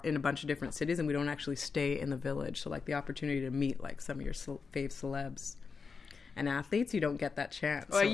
in a bunch of different cities, and we don't actually stay in the village. So like the opportunity to meet like some of your fave celebs and athletes, you don't get that chance. Well, So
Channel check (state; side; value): quieter; right; 5.1 dB